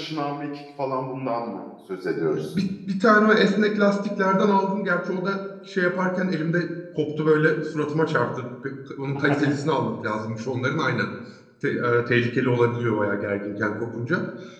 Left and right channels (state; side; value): identical; both; correlation 1.00